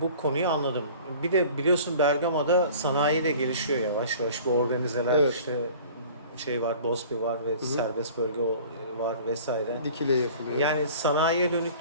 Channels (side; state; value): both; inverted; correlation -0.45